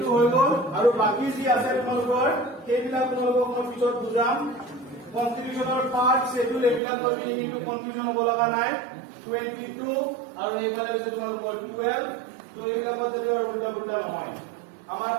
হৈ গ'ল আৰু বাকী যি আছে তোমালোকৰ সেইবিলাক তোমালোকক মই পিছত বুজাম কনষ্টিটিউচনৰ পাৰ্ট শেডিউল এইবিলাক লৈ পিনি কিন্তু কনফিউজন হ'ব লগা নাই 22 আৰু এইফালে হৈছে তোমালোকৰ 12 তো এইবিলাকৰ যদি উল্টা পুল্টা নহয় আমাৰ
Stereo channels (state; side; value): drops out; left; at 6.8 s